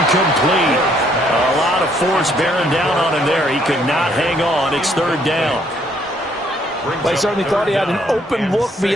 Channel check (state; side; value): normal; both; correlation 0.67